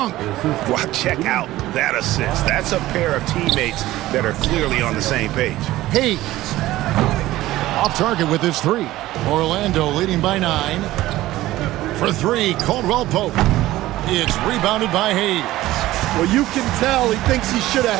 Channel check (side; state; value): left; quieter; 16.2 dB